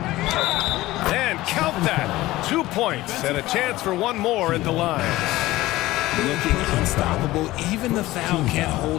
And count that. 2 points and a chance for 1 more at the line. Looking unstoppable. Even the foul can't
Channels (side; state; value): right; quieter; 17.5 dB